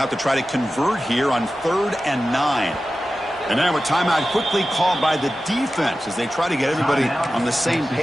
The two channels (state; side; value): normal; both; correlation 0.94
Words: to try to convert here on 3rd and 9. And now a timeout quickly called by the defense as they try to get everybody on the same